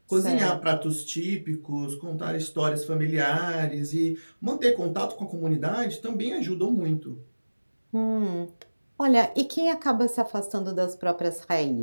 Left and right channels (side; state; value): both; inverted; correlation -1.00